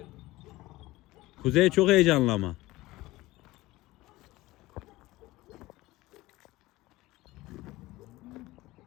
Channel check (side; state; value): right; quieter; 18.7 dB